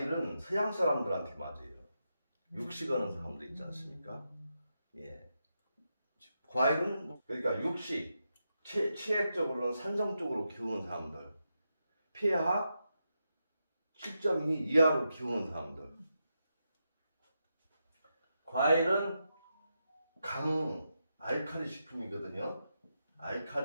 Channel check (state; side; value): inverted; both; correlation -0.86